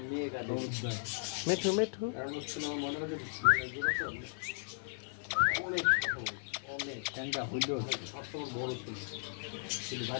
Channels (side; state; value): right; silent; digital silence